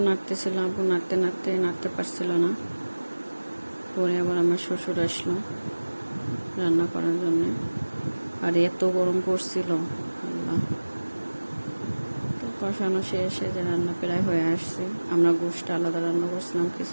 নাড়তেছিল, আপু নাড়তে পারছিল না। পরে আবার আমার শ্বশুর আসলো রান্না করার জন্যে। আর এত গরম পড়ছিল, আল্লাহ। তো কষানো শেষে যে রান্না প্রায় হয়ে আসছে। আমরা গোশটা আলাদা রান্না করছিলাম,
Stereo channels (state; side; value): inverted; both; correlation -1.00